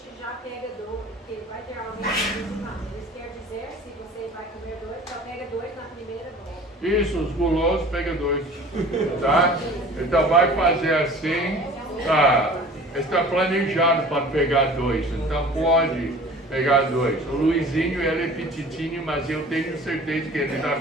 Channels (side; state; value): both; normal; correlation 0.44